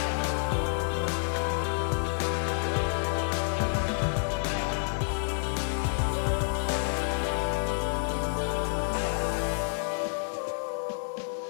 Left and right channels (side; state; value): right; silent; digital silence